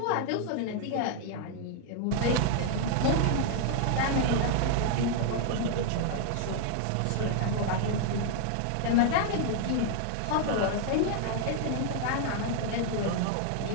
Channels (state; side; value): different; both; correlation 0.00